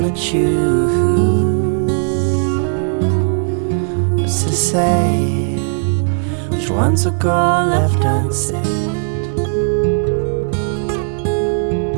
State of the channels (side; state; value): left; silent; 66 dB below the other